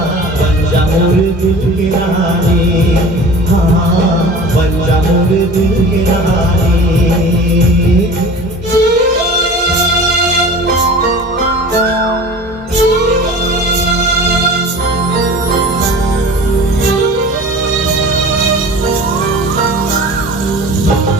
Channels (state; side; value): normal; both; correlation 0.39